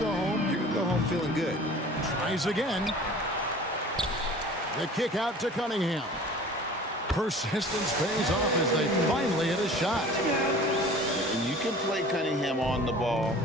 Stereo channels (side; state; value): both; normal; correlation 0.44